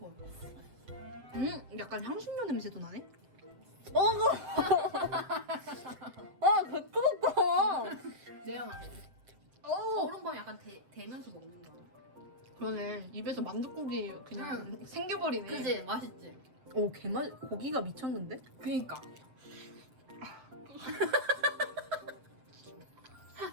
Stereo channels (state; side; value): late; left; 7.8 ms